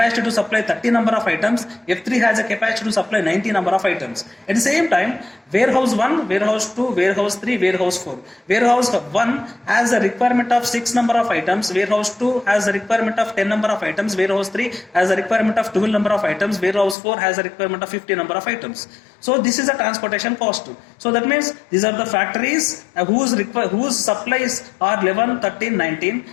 to supply 30 number of items, F3 has a capacity to supply 90 number of items. At the same time, warehouse 1, warehouse 2, warehouse 3, warehouse 4. Warehouse 1 has a requirement of 6 number of items, warehouse 2 has a requirement of 10 number of items, warehouse 3 has a requirement of 12 number of items, warehouse 4 has a requirement of 50 number of items. So this is a transportation cost. So that means these are the factories whose supplies are 11, 13, 19.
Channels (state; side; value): drops out; right; at 16.9 s